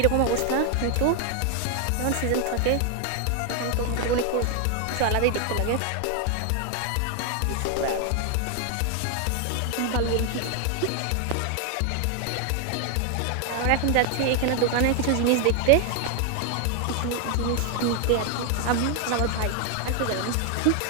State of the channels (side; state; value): both; different; correlation 0.00